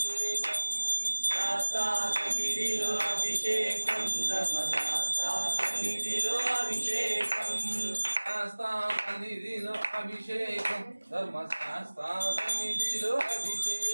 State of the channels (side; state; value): both; inverted; correlation -1.00